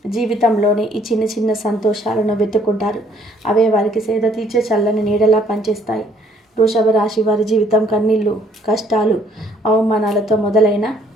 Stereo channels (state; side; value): normal; both; correlation 0.64